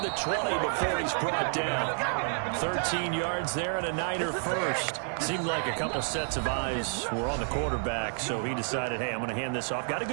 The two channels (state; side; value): silent; left; 58 dB below the other